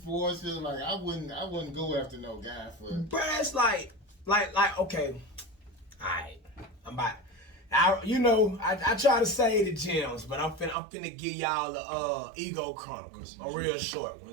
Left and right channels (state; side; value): drops out; left; at 10.8 s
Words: her. Like I wouldn't go after no guy for. But it's like, okay, all right, I'm about. I try to say the gems, but I'm finna give y'all the ego chronicles, a real short one.